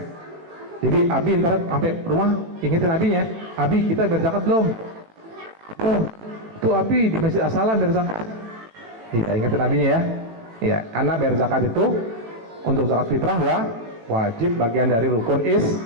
Jadi abi ntar sampai rumah ingetin abinya, abi kita bayar zakat belum? Oh, tuh abi di Masjid As-Salam bayar zakat. Iya, ingetin abinya ya. Iya, karena bayar zakat itu untuk zakat fitrah wajib, bagian dari rukun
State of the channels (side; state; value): left; late; 18 ms